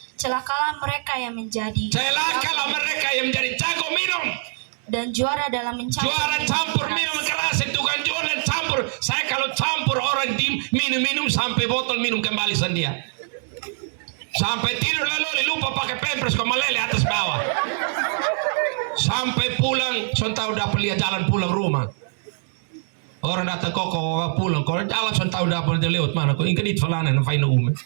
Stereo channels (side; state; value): left; silent; digital silence